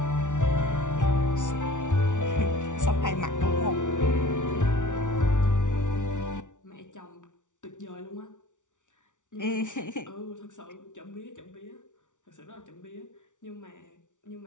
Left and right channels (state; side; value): late; right; 0.86 ms